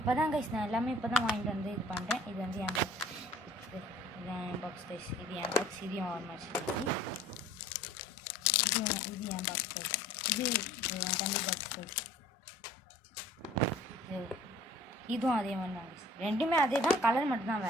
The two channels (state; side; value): normal; both; correlation 0.51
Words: தான் கைஸ், நான் எல்லாமே இப்போ தான் வாங்கிட்டு வந்து இது பண்ணுறேன். இது வந்து என் பாக்ஸ். இதுதான் என் பாக்ஸ் கைஸ். இது என் பாக்ஸ். இதையும் ஓரமாக வச்சுருக்கேன். இது என் பாக்ஸ் கைஸ். இது என் தம்பி பாக்ஸ் கைஸ். இதுவும் அதே மாதிரி தான் கைஸ். ரெண்டுமே அதே தான், கலர் மட்டும்தான்